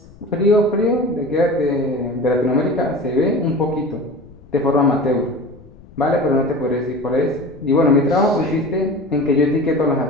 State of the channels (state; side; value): noise; left; rumble, 23 dB below the sound